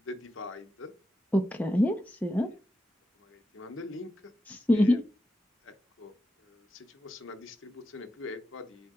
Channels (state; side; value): normal; both; correlation 0.88